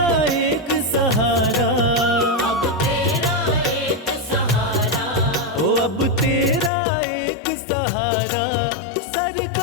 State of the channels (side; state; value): right; drops out; at 6.7 s